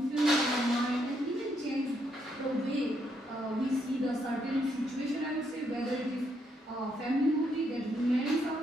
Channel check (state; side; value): normal; both; correlation 0.76